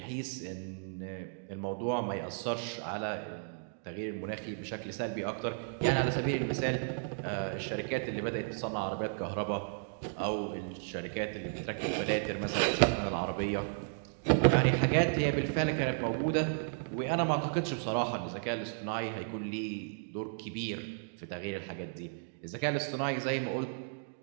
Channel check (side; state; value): left; silent; digital silence